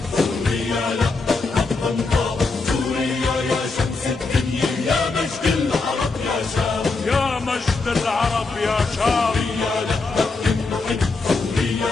سوريا لا حقا طاب، سوريا يا شمس الدنيا، يا مجد العرب يا شام، يا مجد العرب يا شام. سوريا لا تنحل،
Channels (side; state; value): right; quieter; 3.9 dB